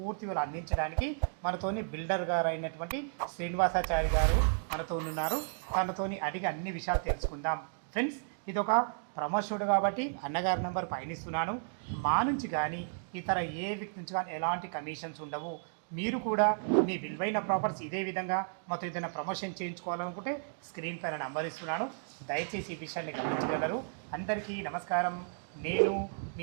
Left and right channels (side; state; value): left; silent; digital silence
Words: వివరాలు అందించడానికి మనతోని బిల్డర్ గారు అయినటువంటి శ్రీనివాసాచారి గారు మనతో ఉన్నారు. తనతోని అడిగి అన్ని విషయాలు తెలుసుకుందాం. ఫ్రెండ్స్, ఇది ఒక ప్రమోషనుడు కాబట్టి అన్నగారి నెంబర్ పయనిస్తున్నాను. మా నుంచి కానీ ఇతర ఏ వ్యక్తి నుంచి కానీ ఎలాంటి కమిషన్స్ ఉండవు. మీరు కూడా మీ విలువైన ప్రాపర్టీస్ ఇదే విధంగా మాతో ఏదైనా ప్రమోషన్ చేయించుకోవాలనుకుంటే స్క్రీన్ పైన నంబర్ ఇస్తున్నాను. దయచేసి ఈ విషయాన్ని గమనించగలరు. అందరికీ నమస్కారం. నేను